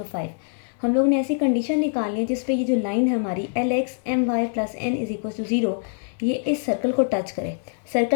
5। हम लोग ने ऐसी कंडीशन निकालनी है जिस पे ये जो लाइन है हमारी LX/My + N = 0 ये इस सर्कल को टच करे।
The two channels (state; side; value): silent; right; digital silence